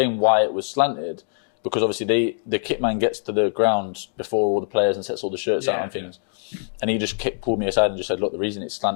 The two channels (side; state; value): right; silent; digital silence